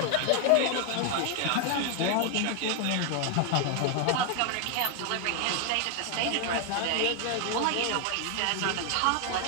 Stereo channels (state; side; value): different; both; correlation 0.00